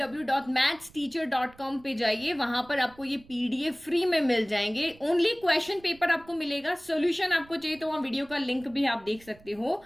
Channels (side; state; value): right; noise; rumble, 25 dB below the sound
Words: पे जाइए, वहां पर आपको ये पीडीएफ फ्री में मिल जाएंगे। ओनली क्वेश्चन पेपर आपको मिलेगा, सॉल्यूशन आपको चाहिए तो वहाँ वीडियो का लिंक भी आप देख सकते हो